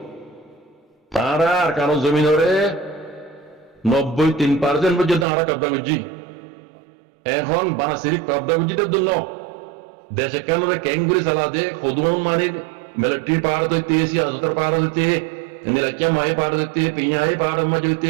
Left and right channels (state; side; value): drops out; left; at 5.2 s